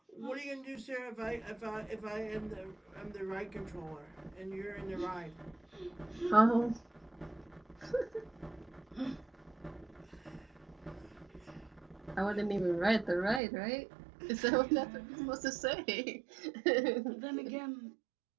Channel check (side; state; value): left; drops out; at 13.4 s